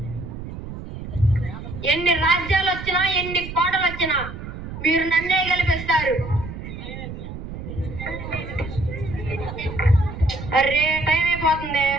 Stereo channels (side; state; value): right; noise; rumble, 10 dB below the sound